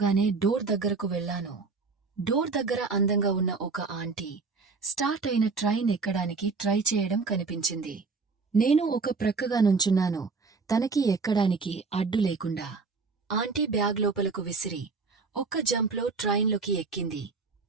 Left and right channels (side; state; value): left; quieter; 4.4 dB